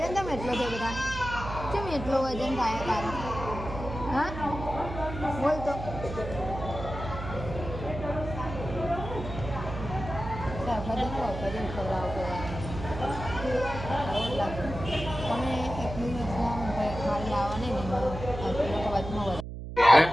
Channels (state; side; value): noise; right; hum, 8 dB below the sound